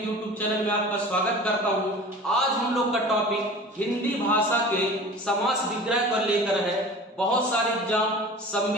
चैनल में आपका स्वागत करता हूं। आज हम लोग का टॉपिक हिंदी भाषा के समास विग्रह पर लेकर है। बहुत सारे एग्जाम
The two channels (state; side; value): normal; both; correlation 0.39